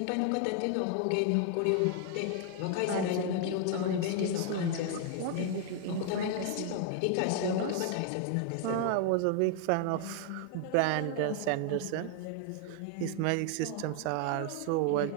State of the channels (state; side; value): different; both; correlation 0.00